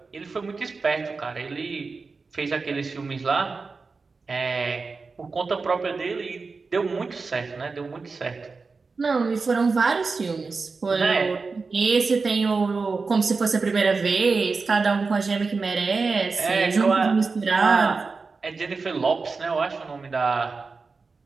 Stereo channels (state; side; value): quieter; left; 4.4 dB